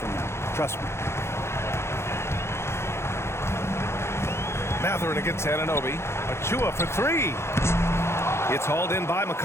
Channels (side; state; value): right; late; 0.13 ms